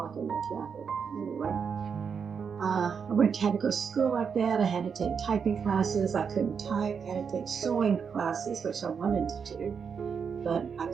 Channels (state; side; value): quieter; left; 6.4 dB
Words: in the traffic. Anyway, had to go to school like that. I had to take typing classes. I couldn't type. I had to take sewing classes, which I wanted to do, but I